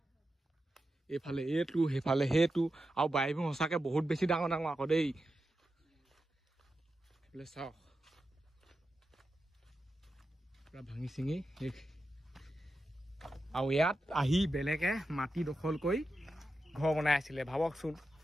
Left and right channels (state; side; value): normal; both; correlation 0.90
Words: এইফালে এইটো সেইফালে সেইটো আৰু বাৰীবোৰ সঁচাকৈ বহুত বেছি ডাঙৰ ডাঙৰ আকৌ দেই এইফালে চাওক পূৰা ভাঙি চিঙি শেষ আৰু ইয়াত আহি বেলেগে মাটি দখল কৰি ঘৰ বনাই আছিলে ভাবকচোন